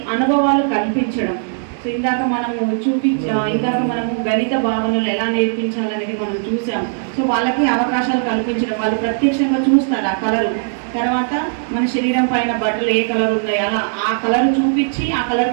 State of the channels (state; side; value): silent; left; 67 dB below the other